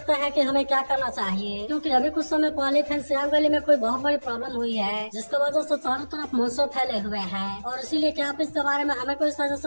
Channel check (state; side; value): inverted; both; correlation -1.00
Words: है कि हमें क्या करना चाहिए, क्योंकि अभी कुछ समय पहले फेंसियांग वैली में कोई बहुत बड़ी प्रॉब्लम हुई है जिसकी वजह से चारों तरफ मॉन्स्टर फैले हुए हैं और इसीलिए क्या आप इसके बारे में हमें कोई